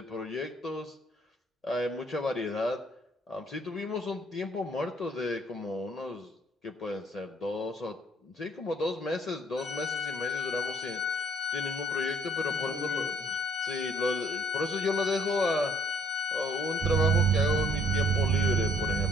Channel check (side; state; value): both; normal; correlation 0.62